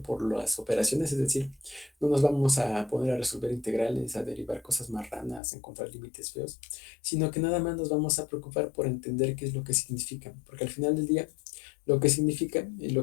por las operaciones, es decir, no nos vamos a poner a resolver integrales, a derivar cosas marranas, a encontrar límites feos, sino que nada más nos vamos a preocupar por entender qué es lo que significa, porque al final del día lo que significa es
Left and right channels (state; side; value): drops out; right; at 5.4 s